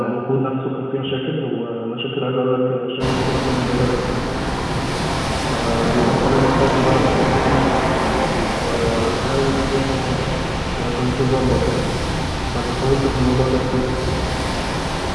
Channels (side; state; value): both; identical; correlation 1.00